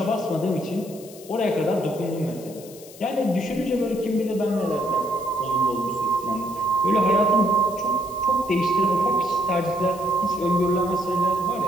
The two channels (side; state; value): left; noise; hiss, 19 dB below the sound